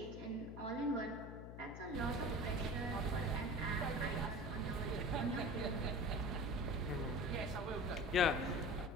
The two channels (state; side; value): noise; left; hum, 10 dB below the sound